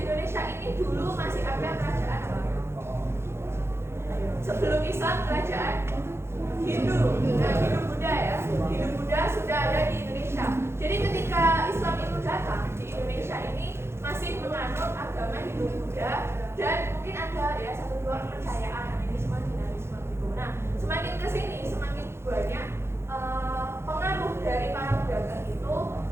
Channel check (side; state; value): left; late; 0.12 ms